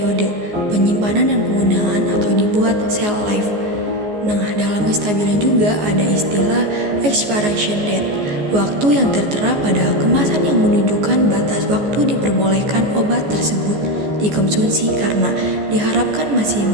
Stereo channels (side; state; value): left; late; 14 ms